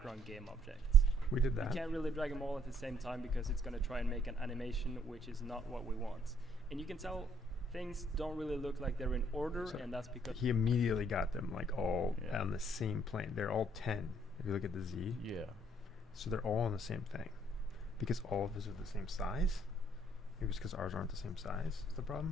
game object. We did You that. can't really drag them all at the same time because it's going to try and make an animation which is not what we want. And you can tell things don't really look like they're in order, So and that's because He immediately got them like all Yeah. on the same plane. They're all 10. If you look at the Z, Yeah. so they're all on the same thing. Because all of his are the same size. Maybe it's because ours aren't the same size. Is the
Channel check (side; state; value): both; normal; correlation 0.67